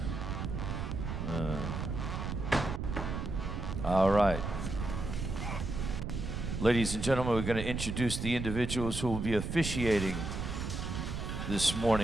All right. Ladies and gentlemen, we're going to introduce the individuals who will be officiating this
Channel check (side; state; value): right; noise; rumble, 4 dB below the sound